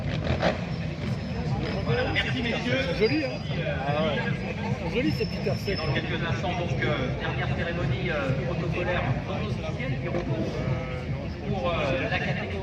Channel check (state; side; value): identical; both; correlation 1.00